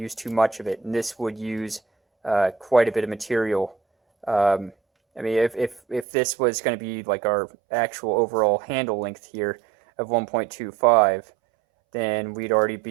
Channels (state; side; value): drops out; left; at 6.1 s